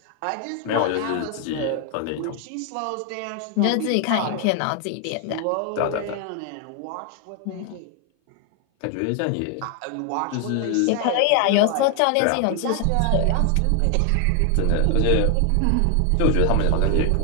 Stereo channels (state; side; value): different; both; correlation 0.00